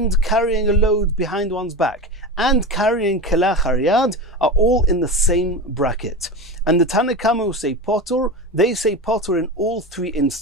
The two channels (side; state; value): both; normal; correlation 0.25